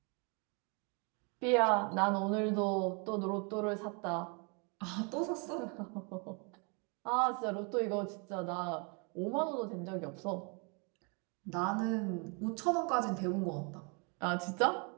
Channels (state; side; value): quieter; left; 33.4 dB